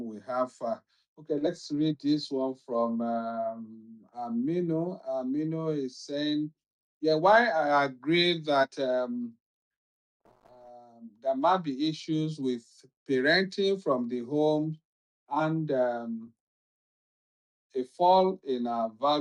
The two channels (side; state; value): both; identical; correlation 1.00